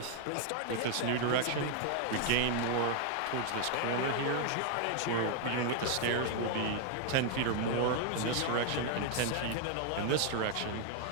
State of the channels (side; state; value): both; different; correlation 0.00